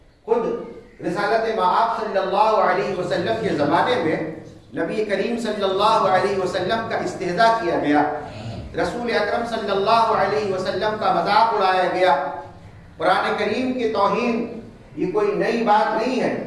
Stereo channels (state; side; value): identical; both; correlation 1.00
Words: خود رسالت مآب صلی اللہ علیہ وسلم کے زمانے میں نبی کریم صلی اللہ علیہ وسلم کا استہزاء کیا گیا, رسول اکرم صلی اللہ علیہ وسلم کا مذاق اڑایا گیا. قرآن کریم کی توہین یہ کوئی نئی بات نہیں ہے,